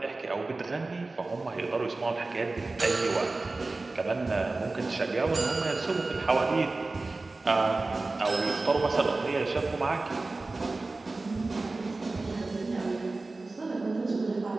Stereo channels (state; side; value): quieter; left; 3.4 dB